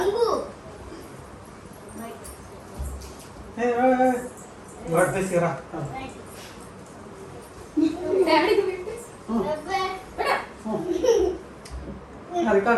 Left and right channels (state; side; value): identical; both; correlation 1.00